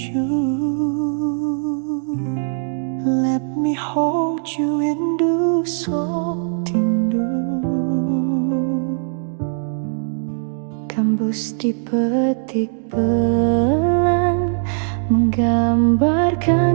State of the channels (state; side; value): silent; left; digital silence